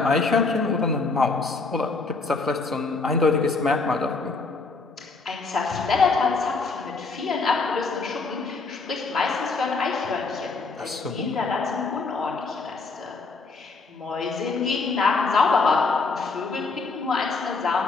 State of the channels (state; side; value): quieter; right; 4.0 dB